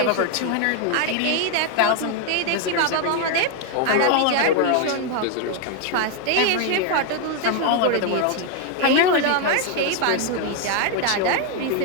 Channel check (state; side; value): different; both; correlation 0.01